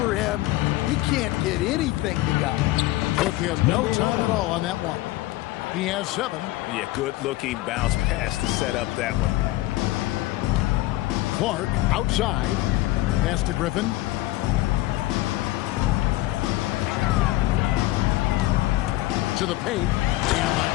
him. He can't get anything to go. Took him no time at all on that one. He has 7. Yeah, good-looking bounce pass to set up that one. Clark outside. Pass to Griffin. To the paint.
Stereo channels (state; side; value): quieter; right; 17.4 dB